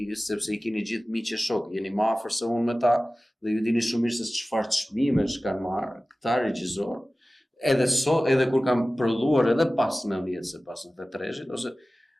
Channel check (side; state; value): both; normal; correlation 0.97